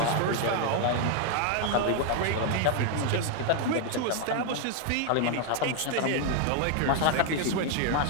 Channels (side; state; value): both; different; correlation 0.00